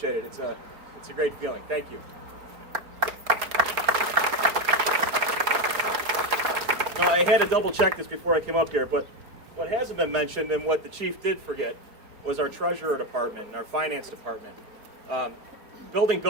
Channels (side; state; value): left; late; 4.3 ms